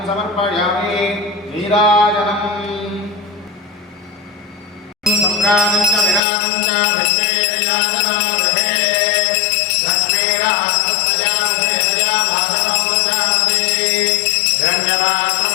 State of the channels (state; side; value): drops out; right; at 6.2 s